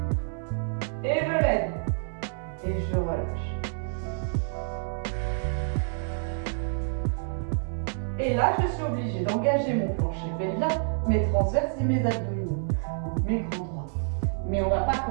Et je lève. Et je relâche. Et là, je suis obligée d'engager mon plancher pelvien, mes transverses et mes abdominaux, mes grands droits. Mais on ne va pas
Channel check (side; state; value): left; silent; digital silence